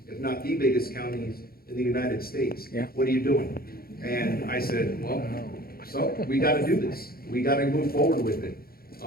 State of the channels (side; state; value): right; late; 0.44 ms